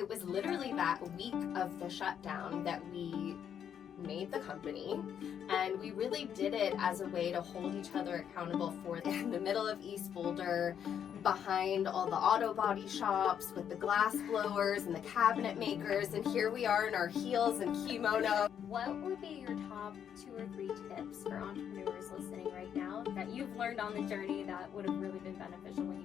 was literally that week of the shutdown that we made the company, and we really did it as a way to hold each other accountable for in the middle of East Boulder, behind all the auto body shops with the glass blowers and the cabinet makers, and here we are in our heels and kimono. What would be your top 2 or 3 tips for entrepreneurs listening right now that you've learned on the journey that would have really been beneficial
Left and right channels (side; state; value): right; quieter; 8.7 dB